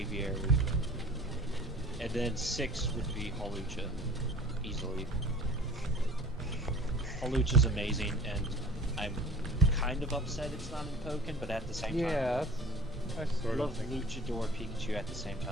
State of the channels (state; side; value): normal; both; correlation 0.43